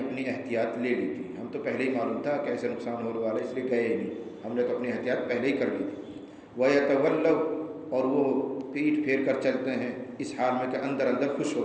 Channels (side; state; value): both; identical; correlation 1.00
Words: احتیاط لے لی تھی، ہم تو پہلے ہی معلوم تھا کہ ایسے نقصان ہونے والا، اس لیے گئے ہی نہیں، ہم نے تو اپنی احتیاط پہلے ہی کر لی تھی. وَيَتَوَلَّوْا، اور وہ پیٹ پھیر کر چلتے ہیں اس حال میں کہ اندر اندر خوش